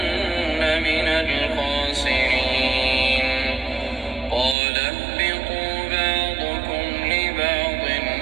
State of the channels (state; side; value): drops out; left; at 4.5 s